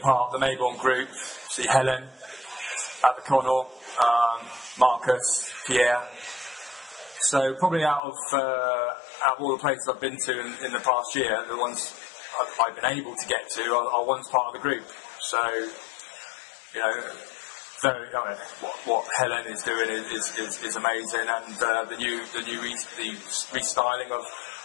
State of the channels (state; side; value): drops out; right; at 8.0 s